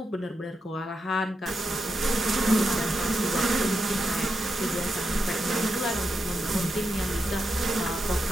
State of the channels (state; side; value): normal; both; correlation 0.86